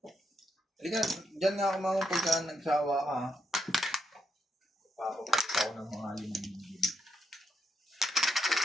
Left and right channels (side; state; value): both; normal; correlation 0.80